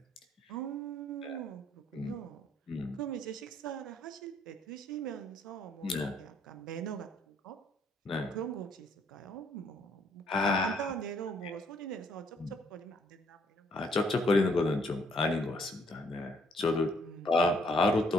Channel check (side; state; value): both; normal; correlation 0.67